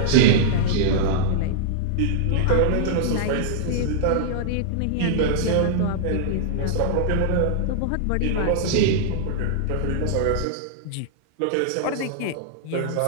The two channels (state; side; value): different; both; correlation -0.02